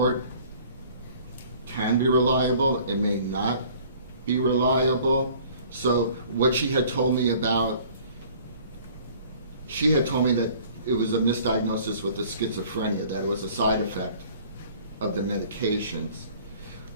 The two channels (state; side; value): inverted; both; correlation -0.52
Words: can be reliable, it may not be reliable. So what she had told me that it was a misdiagnosis with the schizophrenia, that it was a side effect of the medications.